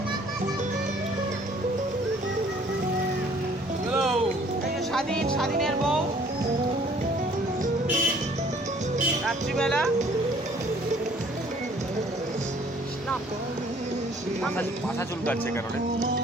এই যে স্বাধীনের বউ রাত্রিবেলা। মাথা চুলকাচ্ছে কেন রে?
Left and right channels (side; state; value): both; normal; correlation 0.58